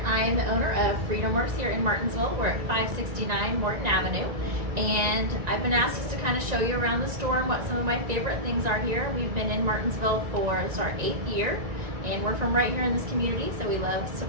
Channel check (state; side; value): late; left; 2.0 ms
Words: I am the owner of Workz here in Martinsville. We're at 569 Morton Avenue, and I've been asked just to kind of show you around the store and what some of my favorite things are here. We've been in Martinsville for our 8th year, and we're from right here in this community, so we love